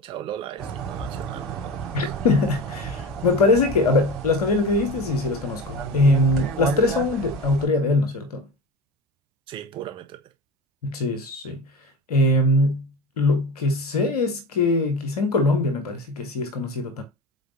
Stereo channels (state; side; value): normal; both; correlation 0.30